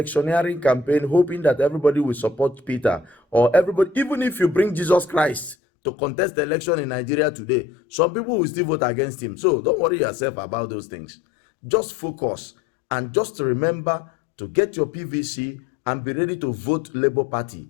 campaign hoping that everybody will support Peter, or everybody, even if you bring Jesus Christ to contest the election in Nigeria today, some people will still vote against him. So don't worry yourself about those things. Just focus and just remember to get your PVC and be ready to vote Labour Party,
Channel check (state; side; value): drops out; right; at 5.6 s